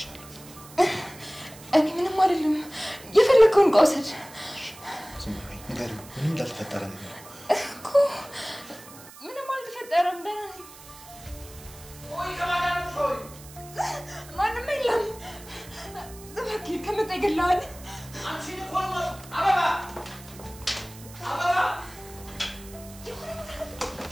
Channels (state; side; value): noise; right; hiss, 19 dB below the sound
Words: እኔ ምንም አይደለም የፈለከውን ቆሰድ ዝም በይ ንገሪው ምንም እንዳልተፈጠረ ነገር እኮ ምንም አልተፈጠረም ደህና ነኝ ወይ ከማዳን ሆይ ማንም የለም እባክህ ከመጣ ይገላል አንቺ ልቆም አበባ አበባ